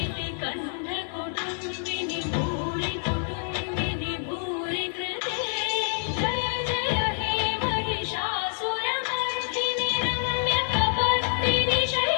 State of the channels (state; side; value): silent; right; digital silence